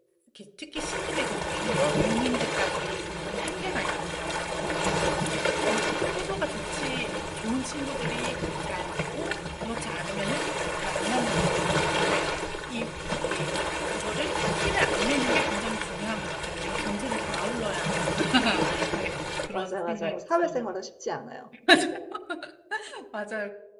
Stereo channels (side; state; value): both; identical; correlation 1.00